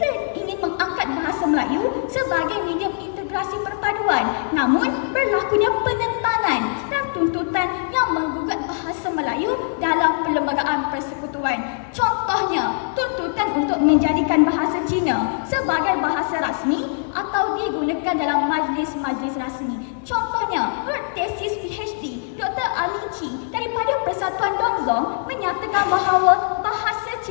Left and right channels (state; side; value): silent; right; digital silence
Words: ingin mengangkat bahasa Melayu sebagai medium integrasi perpaduan. Namun, berlakunya penentangan dan tuntutan yang menggugat bahasa Melayu dalam perlembagaan persekutuan. Contohnya, tuntutan untuk menjadikan bahasa Cina sebagai bahasa rasmi atau digunakan dalam majlis-majlis rasmi. Contohnya, tesis PhD Dr. Ali Chi daripada Persatuan Dongzong menyatakan bahawa bahasa